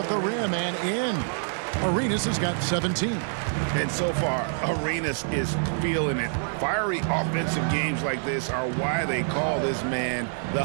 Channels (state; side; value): silent; left; 58 dB below the other